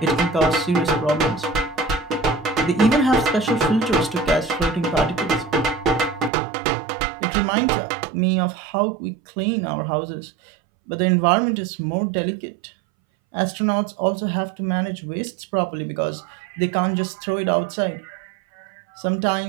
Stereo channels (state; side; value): drops out; left; at 6.3 s